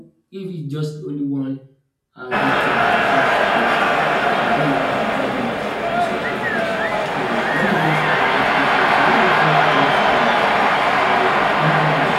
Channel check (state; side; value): identical; both; correlation 1.00